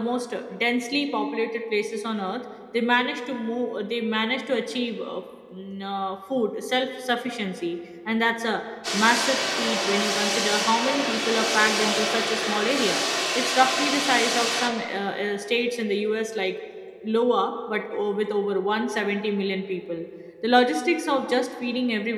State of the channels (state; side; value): identical; both; correlation 1.00